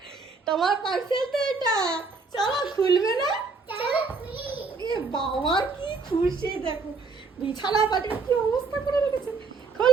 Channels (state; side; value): quieter; left; 4.3 dB